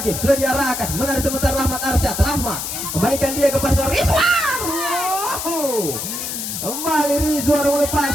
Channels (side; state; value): left; noise; hiss, 5 dB below the sound